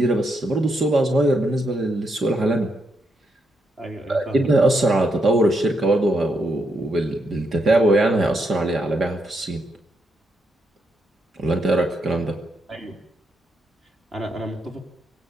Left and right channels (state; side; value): normal; both; correlation 0.80